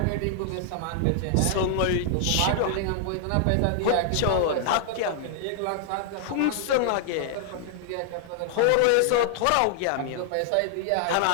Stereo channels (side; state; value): both; different; correlation -0.01